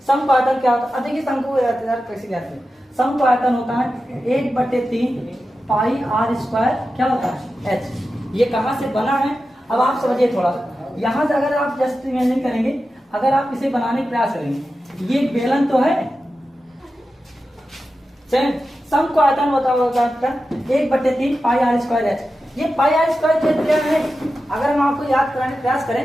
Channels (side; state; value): both; normal; correlation 0.92